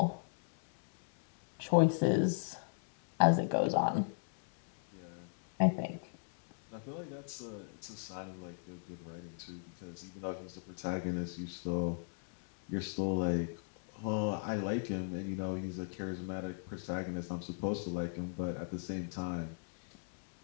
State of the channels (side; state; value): right; silent; digital silence